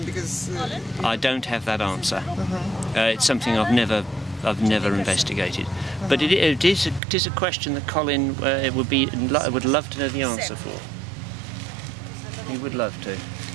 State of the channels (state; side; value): drops out; left; at 7.0 s